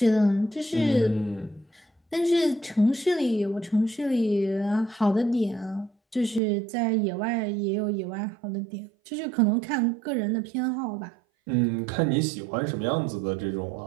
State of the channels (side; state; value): left; drops out; at 6.4 s